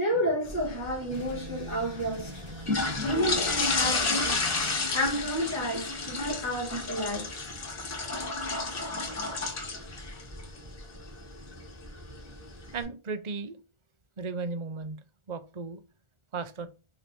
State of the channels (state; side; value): late; left; 1.4 ms